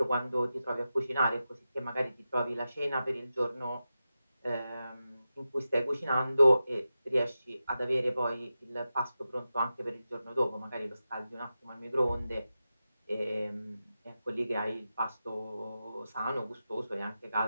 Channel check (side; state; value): both; inverted; correlation -0.92